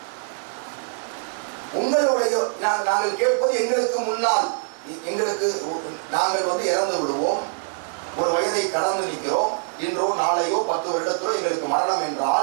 உங்களுடைய நாங்கள் கேட்பது, எங்களுக்கு முன்னால் நாங்கள் இறந்து விடுவோம், ஒரு வயதை கடந்து நிற்கிறோம், இன்றோ நாளையோ 10 வருடத்திலோ எங்களுக்கு மரணம்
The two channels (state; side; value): silent; left; digital silence